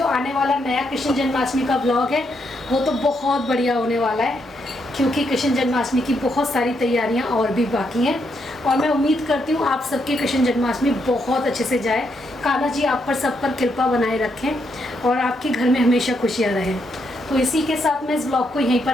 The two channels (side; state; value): both; normal; correlation 0.78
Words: आने वाला नया कृष्ण जन्माष्टमी का ब्लॉग है वो तो बहुत बढ़िया होने वाला है, क्योंकि कृष्ण जन्माष्टमी की बहुत सारी तैयारियां और भी बाकी हैं। और मैं उम्मीद करती हूँ आप सबके कृष्ण जन्माष्टमी बहुत अच्छे से जाए। कान्हा जी आप पर सब पर कृपा बनाए रखें और आपके घर में हमेशा खुशियाँ रहें। तो इसी के साथ मैं इस ब्लॉग को यहीं पर